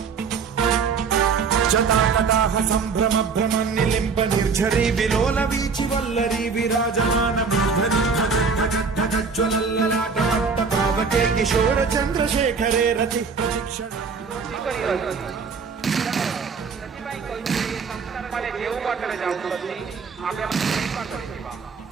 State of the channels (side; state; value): left; quieter; 5.2 dB